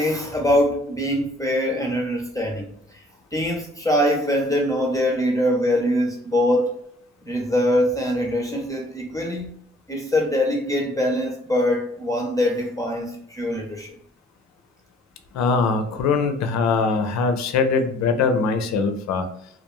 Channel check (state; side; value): normal; both; correlation 0.57